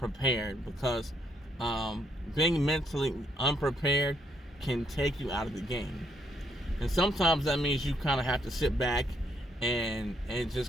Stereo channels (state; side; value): normal; both; correlation 0.73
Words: because being mentally unprepared can take you out of the game. And sometimes that means you kind of have to sit back and